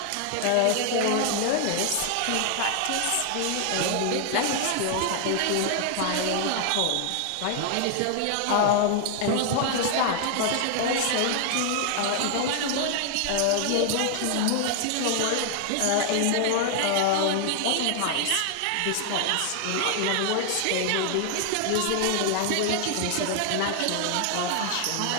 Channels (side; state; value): both; different; correlation 0.00